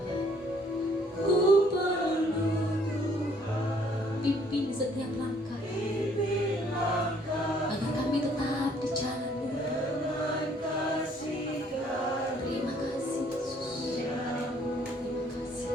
ku perlu Tuhan. Pimpin setiap langkah, agar kami tetap di jalan. Terima kasih Yesus. Terima kasih.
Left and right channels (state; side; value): normal; both; correlation 0.62